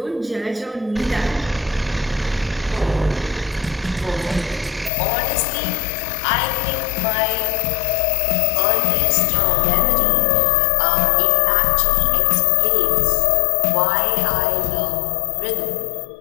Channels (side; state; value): right; drops out; at 4.9 s